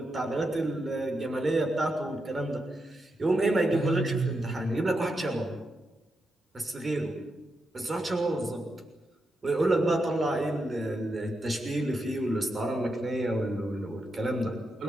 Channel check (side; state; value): both; normal; correlation 0.85